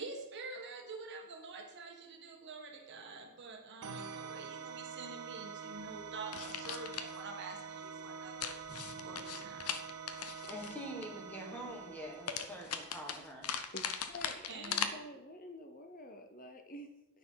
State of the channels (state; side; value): normal; both; correlation 0.02